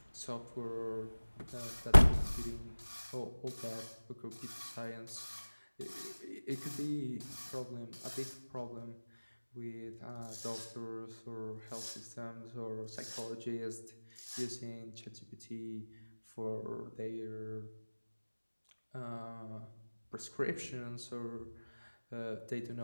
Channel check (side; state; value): both; inverted; correlation -1.00